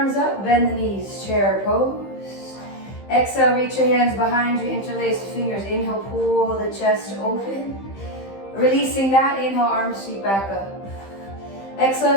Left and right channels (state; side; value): late; right; 15 ms